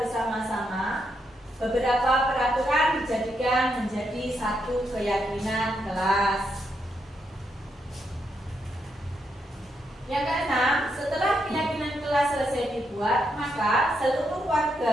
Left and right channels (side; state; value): both; normal; correlation 0.80